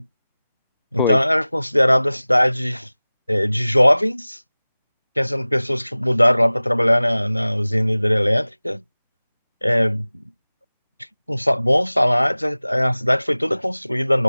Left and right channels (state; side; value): inverted; both; correlation -0.98